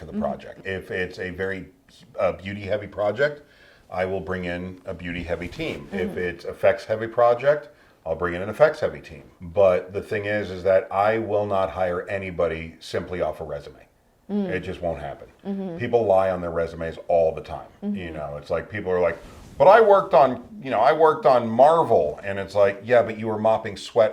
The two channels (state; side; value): identical; both; correlation 1.00